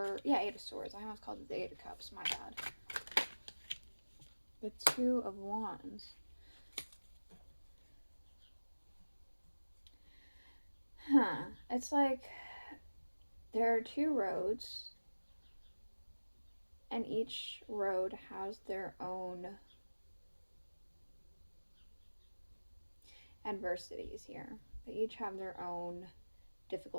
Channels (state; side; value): inverted; both; correlation -1.00